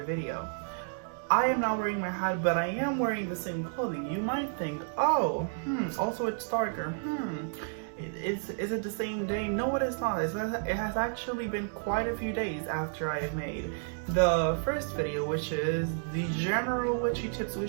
video. I am not wearing my hat, but I am wearing the same clothing. You might think, oh, also it's darker. Is it the same day? No, it is not. It has actually been quite a few days after I have made the first video, which is the general witchy tips,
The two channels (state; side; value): silent; left; digital silence